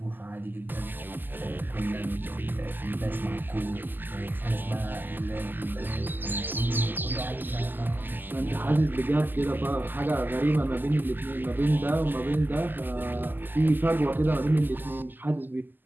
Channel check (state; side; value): late; left; 0.090 ms